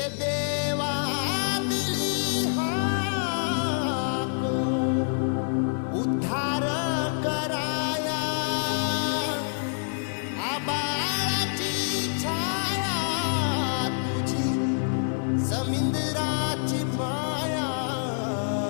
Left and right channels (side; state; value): right; silent; digital silence